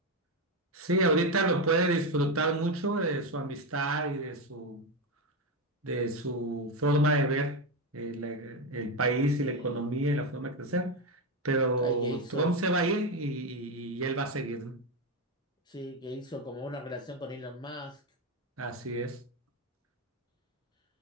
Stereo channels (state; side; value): normal; both; correlation 0.11